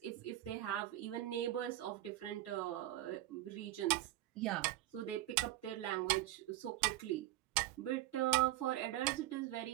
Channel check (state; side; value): quieter; left; 14.9 dB